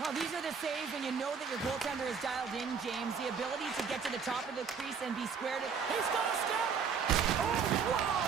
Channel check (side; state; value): left; quieter; 6.1 dB